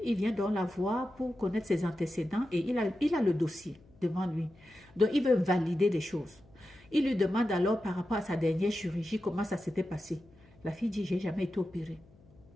il vient donc la voir pour connaître ses antécédents et il a le dossier devant lui. Donc il veut valider des choses. Il lui demande alors par rapport à sa dernière chirurgie comment ça s'était passé. La fille dit, j'ai jamais été opérée.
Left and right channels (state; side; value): noise; left; hum, 27 dB below the sound